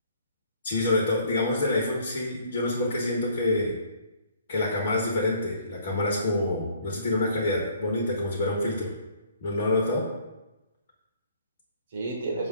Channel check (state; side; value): inverted; both; correlation -0.59